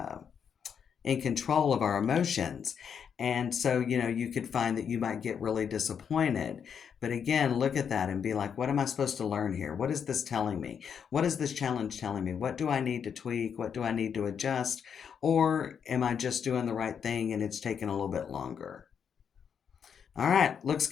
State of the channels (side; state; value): right; quieter; 7.4 dB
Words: in control of our emotions. And so, you could find that you might get really disappointed. But again, look at that and be like, what am I supposed to learn here? What is this telling me? What is this challenge telling me? What do I need to tweak? What do I need to adjust? Or am I just doing the right thing and it's taking a little bit longer? All right, looks